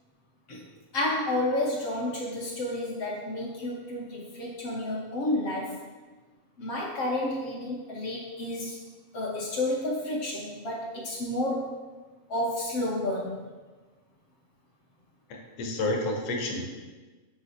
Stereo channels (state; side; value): late; right; 7.5 ms